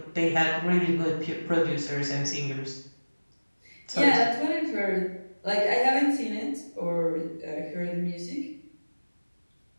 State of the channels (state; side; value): inverted; both; correlation -1.00